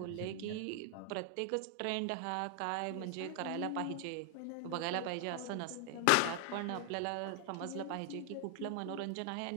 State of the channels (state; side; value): different; both; correlation 0.00